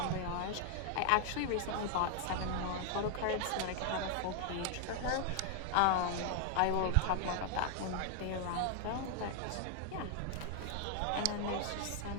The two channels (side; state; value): both; different; correlation 0.00